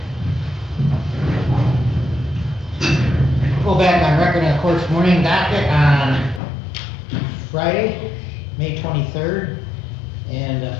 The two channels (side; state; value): right; drops out; at 6.4 s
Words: Go back on record in the court's morning docket on Friday, May 23rd. And the